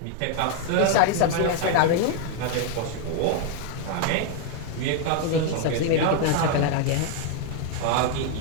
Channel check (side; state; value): both; different; correlation 0.00